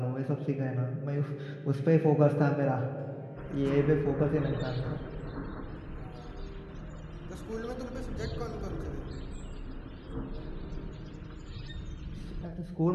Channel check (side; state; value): both; identical; correlation 1.00